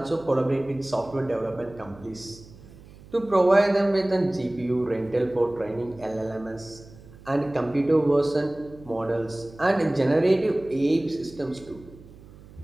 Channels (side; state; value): right; noise; hum, 21 dB below the sound